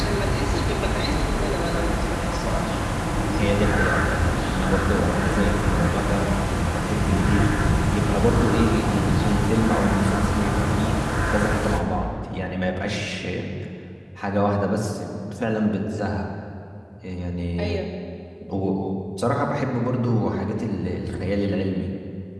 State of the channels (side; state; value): both; identical; correlation 1.00